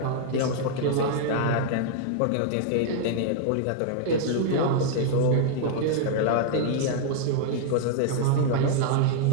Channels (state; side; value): different; both; correlation -0.01